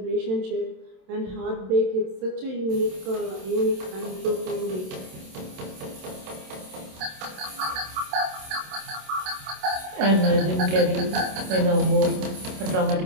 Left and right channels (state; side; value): late; left; 27 ms